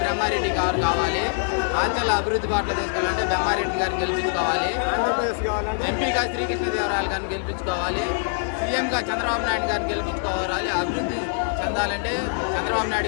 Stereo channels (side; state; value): right; silent; digital silence